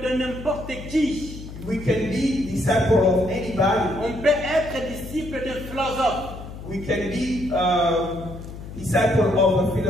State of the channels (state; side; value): noise; left; hum, 12 dB below the sound